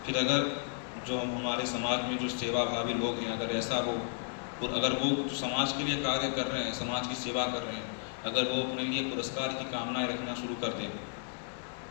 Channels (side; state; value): right; silent; digital silence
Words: फिर अगर जो हमारे समाज में जो सेवा भावी लोग हैं, अगर ऐसा वो और अगर वो समाज के लिए कार्य कर रहे हैं, समाज की सेवा कर रहे हैं, अगर वो अपने लिए पुरस्कार की कामनाएं रखना शुरू कर दें